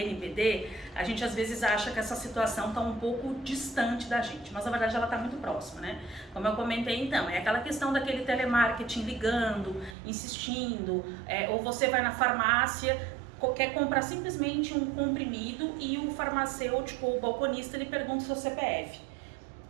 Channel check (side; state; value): left; drops out; at 10.0 s